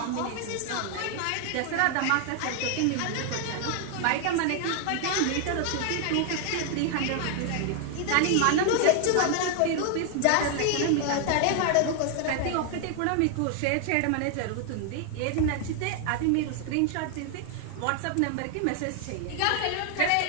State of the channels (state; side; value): different; both; correlation 0.00